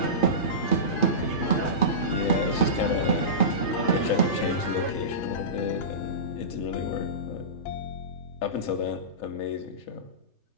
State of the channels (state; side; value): late; right; 3.3 ms